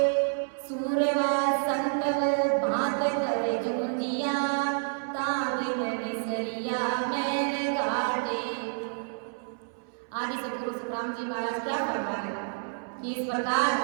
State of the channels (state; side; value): silent; left; 59 dB below the other